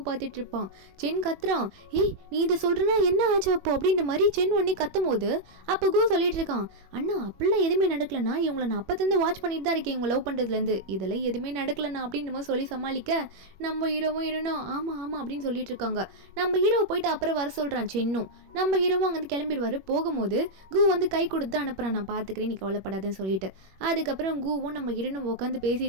பார்த்துட்டு இருப்பான். சென் கத்துறான், ஏய் நீ இதை சொல்கிறனா என்ன ஆச்சு அப்போ அப்படின்ற மாதிரி சென் ஒன்னே கத்தும் போது அப்போ கூ சொல்லிட்டு இருக்கான், அண்ணா அப்படிலாம் எதுவுமே நடக்கலண்ணா, இவங்களை நான் அப்போருந்து வாட்ச் பண்ணிட்டு தான் இருக்கேன் இவங்க லவ் பண்ணுறதுலேருந்து, இதெல்லாம் எதுவுமே நடக்கலண்ணா அப்படின்ற மாதிரி சொல்லி சமாளிக்க நம்ம ஹீரோவும் ஆமாம் அப்படின்னு சொல்லிட்டு இருக்காங்க. நம்ம ஹீரோவை போயிட்டு அப்புறம் வர சொல்கிறான் சென்னும். நம்ம ஹீரோவும் அங்கேருந்து கிளம்பிடுவார். போகும்போது கூ வந்து கை கொடுத்து அனுப்புகிறான், நான் பார்த்துக்கிறேன் நீ கவலைப்படாதுன்னு சொல்லிட்டு. அதுக்கப்புறம் கூவும் நம்ம ஹீரோனும் உட்காந்து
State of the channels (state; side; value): late; left; 21 ms